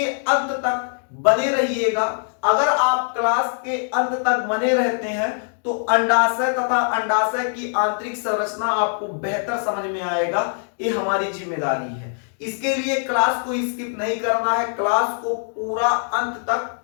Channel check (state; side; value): silent; right; 64 dB below the other